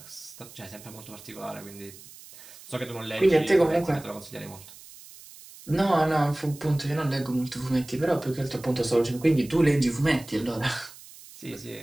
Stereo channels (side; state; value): right; noise; hiss, 19 dB below the sound